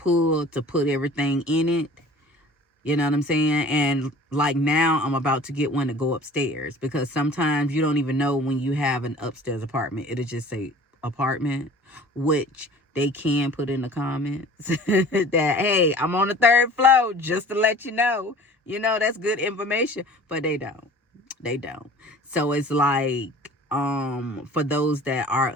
everything in it. You know what I'm saying? And like now I'm about to get one to go upstairs, because sometimes you don't even know when you have an upstairs apartment. It'll just say apartment, which they can put in the comments that, hey, I'm on the 3rd floor, just to let you know. That's good information. But they don't. They don't. So it's like, for those that are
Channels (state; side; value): normal; both; correlation 0.46